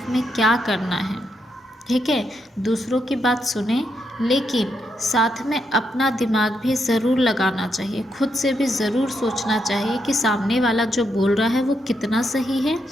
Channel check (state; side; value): normal; both; correlation 0.80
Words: में क्या करना है, ठीक है। दूसरों की बात सुने, लेकिन साथ में अपना दिमाग भी ज़रूर लगाना चाहिए। खुद से भी ज़रूर सोचना चाहिए कि सामने वाला जो बोल रहा है वो कितना सही है